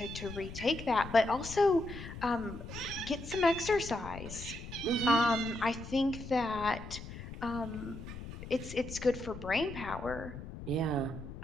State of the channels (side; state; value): left; noise; rumble, 11 dB below the sound